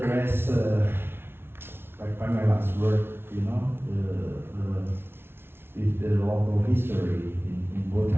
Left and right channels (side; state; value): left; late; 0.11 ms